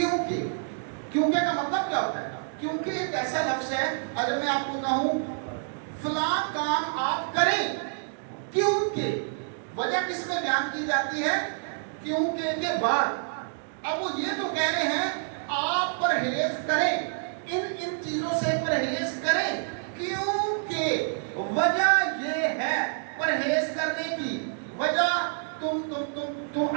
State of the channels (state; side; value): silent; left; digital silence